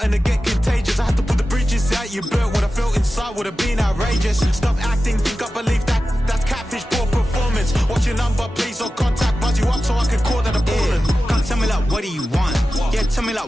to get contagious. I had to put the bridges out you built. What I felt inside would have been outrageous. Stop acting, think I believe that. That's catfish, poor performance. What's your number, please, or contact. Buzz you up so I can call that a ballin'. Can't tell me like, what do you want? Yeah, tell me like,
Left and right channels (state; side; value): normal; both; correlation 0.94